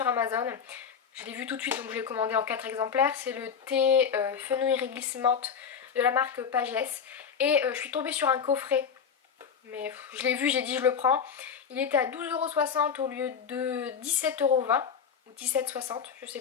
Amazon. Je l'ai vu tout de suite donc je l'ai commandé en 4 exemplaires. C'est le thé fenouil réglisse menthe de la marque Pagès. Et je suis tombée sur un coffret. Mais je l'ai vu, j'ai dit je le prends. Il était à 12,60€ au lieu de 17,20€ ou 17,60€, je sais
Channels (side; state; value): right; quieter; 6.9 dB